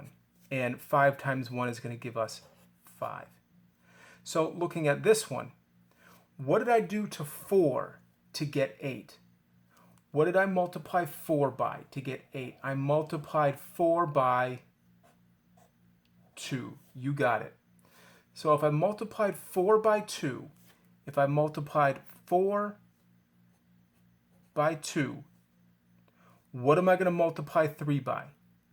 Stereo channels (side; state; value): both; identical; correlation 1.00